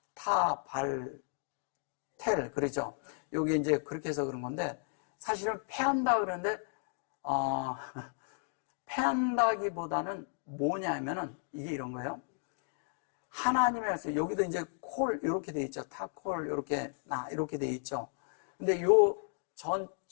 타발텔 그러죠. 요게 이제 그렇게 해서 그런 건데 사실은 패한다 그러는데 패한다기보다는 뭐냐면은 이게 이런 거예요. 하나님의 말씀 여기도 이제 콜 이렇게 돼 있죠. 타콜 이렇게 나 이렇게 돼 있죠. 근데 요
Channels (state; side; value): silent; right; 55 dB below the other